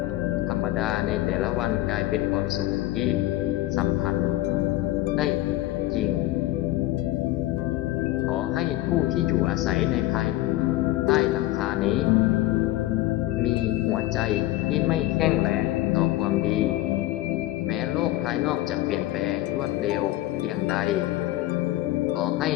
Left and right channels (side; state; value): right; quieter; 16.2 dB